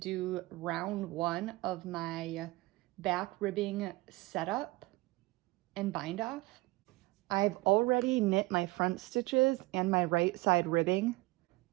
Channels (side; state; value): left; quieter; 21.8 dB